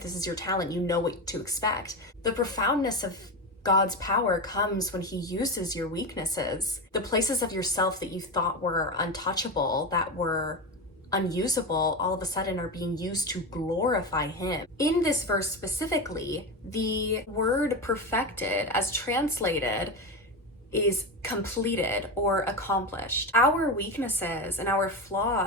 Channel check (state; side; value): normal; both; correlation 0.18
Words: this is your talent, you know what to expect. The profoundness of God's power comes when He uses your weaknesses. The places of yourself that you thought were untouchable, that were unusable, all of a sudden are being used to glorify Him. In this verse specifically, the word perfected, as translated, is completed or accomplished. Our weaknesses and our